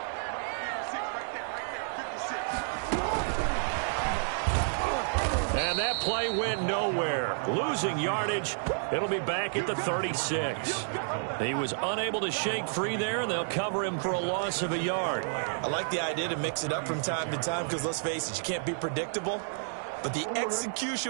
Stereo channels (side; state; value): left; silent; digital silence